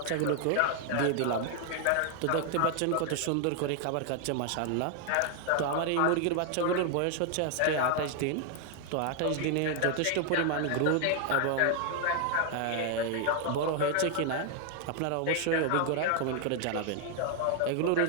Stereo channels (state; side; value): different; both; correlation 0.00